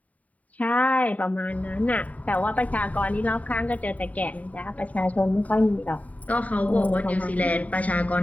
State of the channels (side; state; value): right; late; 0.071 ms